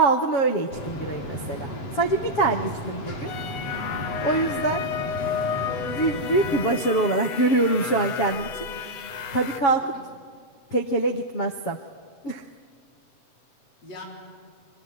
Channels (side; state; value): right; late; 7.3 ms